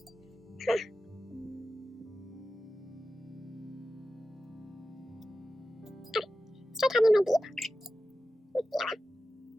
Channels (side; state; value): both; normal; correlation 0.93